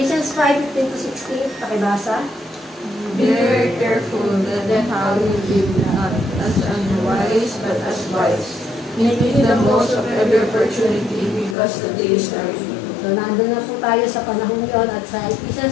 5:15-16, pakibasa. Be very careful that then how you live, not as unwise, but as wise, making the most of every opportunity because the days are evil. So nandun na po tayo sa panahon yon at sa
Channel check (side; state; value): right; drops out; at 11.6 s